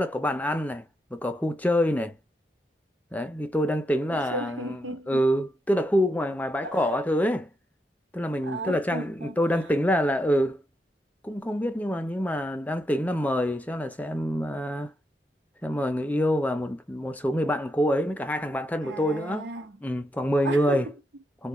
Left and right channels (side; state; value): both; normal; correlation 0.82